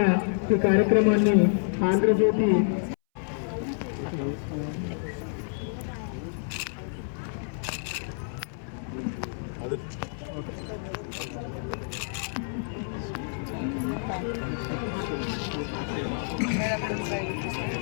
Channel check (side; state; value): right; silent; 59 dB below the other